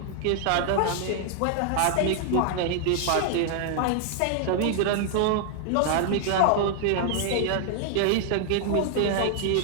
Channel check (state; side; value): different; both; correlation 0.00